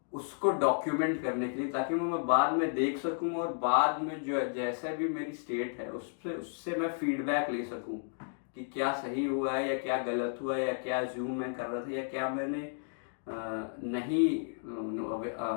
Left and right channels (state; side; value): silent; right; digital silence